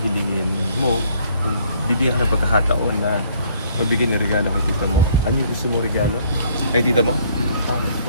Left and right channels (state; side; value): inverted; both; correlation -0.62